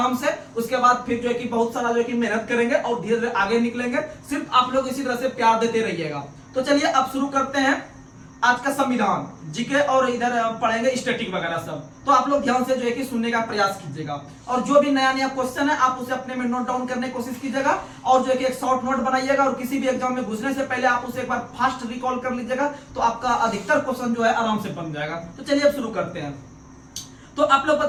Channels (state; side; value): identical; both; correlation 1.00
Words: से। उसके बाद फिर जो है कि बहुत सारा जो है कि मेहनत करेंगे और धीरे धीरे आगे निकलेंगे। सिर्फ आप लोग इसी तरह से प्यार देते रहिएगा। तो चलिए अब शुरू करते हैं आज का संविधान, जीके और इधर पढ़ेंगे स्टैटिक वगैरह सब। तो आप लोग ध्यान से जो है कि सुनने का प्रयास कीजिएगा, और जो भी नया नया क्वेश्चन है आप उसे अपने में नोट डाउन करने की कोशिश कीजिएगा, और जो है कि एक शॉर्ट नोट बनाइएगा, और किसी भी एग्जाम में घुसने से पहले आप उसे एक बार फास्ट रिकॉल कर लीजिएगा, तो आपका अधिकतर क्वेश्चन जो है आराम से बन जाएगा। तो चलिए अब शुरू करते हैं। तो आप लोग